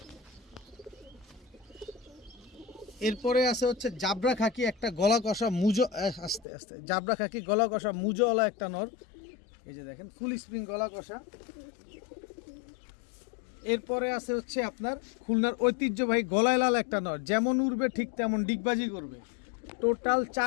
এরপরে আছে হচ্ছে জাবরা খাকি একটা গলা কষা মুজো, আস্তে আস্তে, জাবরা খাকি গলা কষা মুজোওয়ালা একটা নর। এই যে দেখেন ফুল স্প্রিং গলা কষা। এরপরে আছে হচ্ছে আপনার খুলনার ঐতিহ্যবাহী গলায় লাল একটা নর, যেমন উড়বে ঠিক তেমন ডিগবাজি করবে। টোটাল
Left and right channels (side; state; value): right; drops out; at 6.5 s